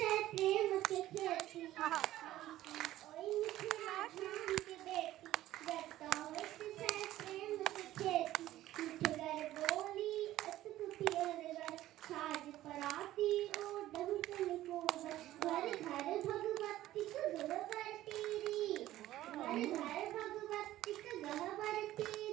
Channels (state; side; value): quieter; left; 14.6 dB